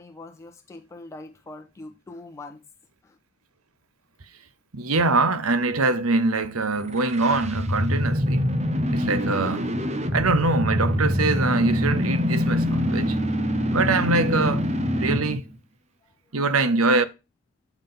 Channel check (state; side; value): normal; both; correlation 0.41